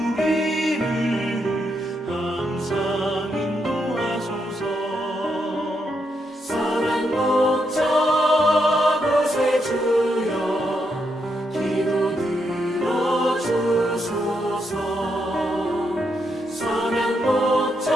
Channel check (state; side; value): normal; both; correlation 0.80